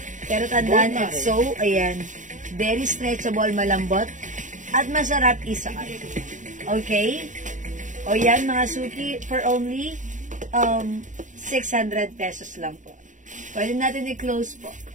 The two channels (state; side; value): late; left; 0.37 ms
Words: Pero tandaan, so, ayan, very stretchable, malambot, at masarap isuot. Okay? O yan, mga suki, for only 600 pesos lang po. Pwede natin i-close po.